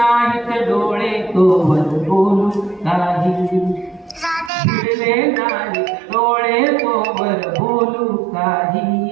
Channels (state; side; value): drops out; left; at 4.5 s